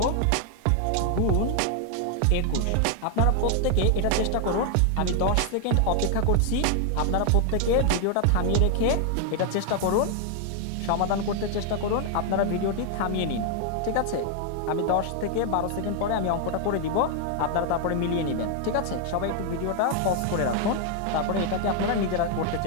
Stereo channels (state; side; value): different; both; correlation 0.00